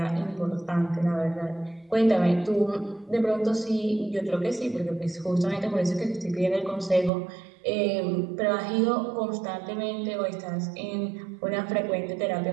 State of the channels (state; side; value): drops out; left; at 7.1 s